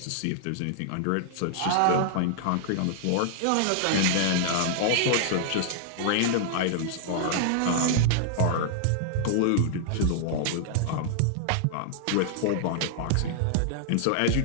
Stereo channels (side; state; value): both; different; correlation -0.01